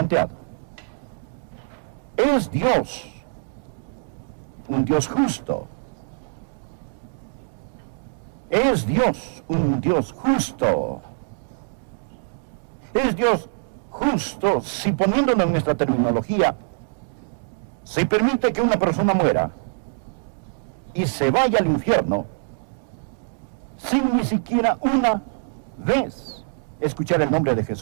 ¿Es Dios un Dios justo? ¿Es Dios un Dios justo? ¿Es Dios justo si, poniéndolo en nuestra terminología, se permite que una persona muera y se vaya al infierno sin ni siquiera una vez escuchar el nombre de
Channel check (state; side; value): silent; left; digital silence